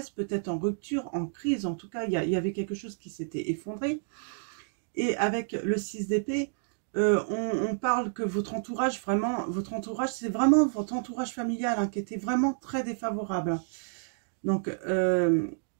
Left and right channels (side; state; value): left; silent; digital silence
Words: peut-être en rupture, en crise, en tout cas, il y avait quelque chose qui s'était effondré. Et avec le 6 d'épée, on parle que votre entourage, c'est vraiment votre entourage familial hein, qui était vraiment très défavorable. Donc,